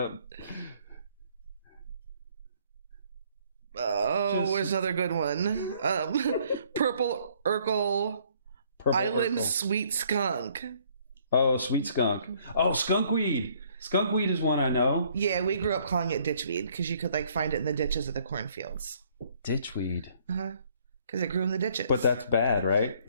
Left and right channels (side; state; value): both; inverted; correlation -0.63